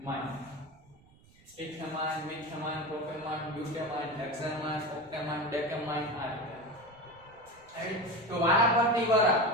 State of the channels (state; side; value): noise; right; rumble, 28 dB below the sound